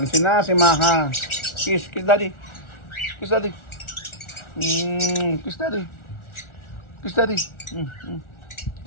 na si Maha. Kiss daddy. Kiss daddy. Kiss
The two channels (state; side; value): late; right; 1.4 ms